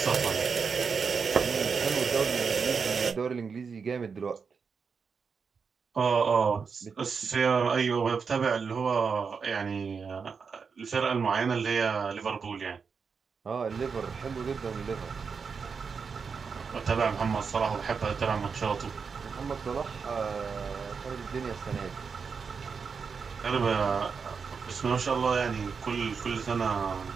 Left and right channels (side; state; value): left; quieter; 5.6 dB